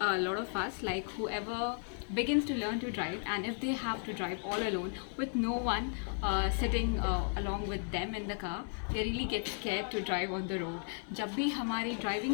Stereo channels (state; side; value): silent; right; 55 dB below the other